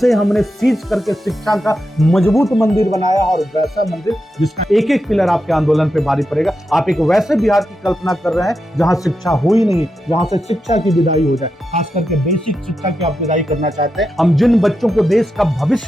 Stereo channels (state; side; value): normal; both; correlation 0.87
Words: हमने सीज करके शिक्षा का मजबूत मंदिर बनाया, और वैसा मंदिर जिसका एक एक पिलर आपके आंदोलन पे भारी पड़ेगा। आप एक वैसे बिहार की कल्पना कर रहे हैं जहां शिक्षा हो ही नहीं, जहां से शिक्षा की विदाई हो जाए, खास करके बेसिक शिक्षा की आप विदाई करना चाहते हैं। हम जिन बच्चों को देश का